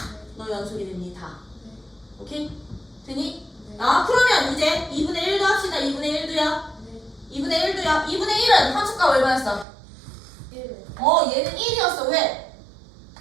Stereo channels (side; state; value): left; drops out; at 9.7 s